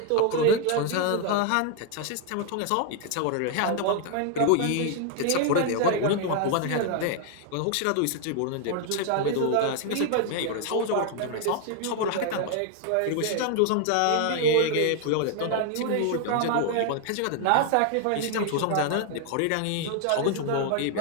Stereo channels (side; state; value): both; different; correlation 0.00